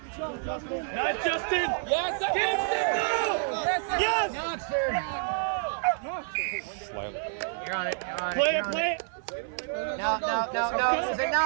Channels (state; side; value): silent; left; 59 dB below the other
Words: Not Justin! Yes, Yes! Slightly. You're on it. Play it, play it! No.